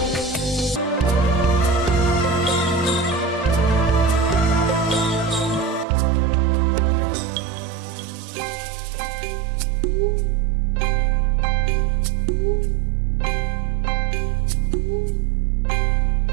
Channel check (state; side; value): drops out; left; at 5.9 s